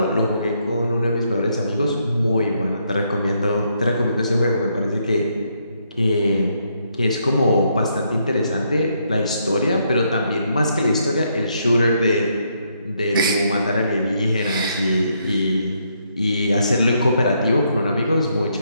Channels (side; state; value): both; inverted; correlation -0.75